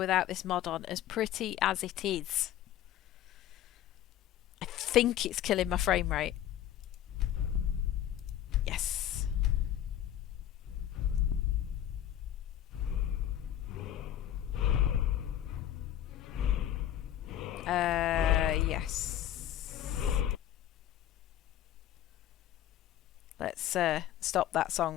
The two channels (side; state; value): right; quieter; 11.5 dB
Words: this mod on, as pretty as it is. I think it's killing my frame rate. Yes. Yes. Let's stop that